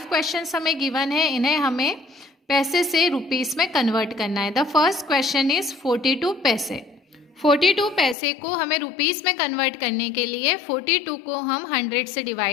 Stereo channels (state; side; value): drops out; right; at 8.2 s